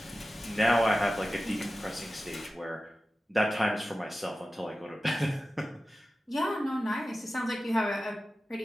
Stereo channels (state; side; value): normal; both; correlation 0.94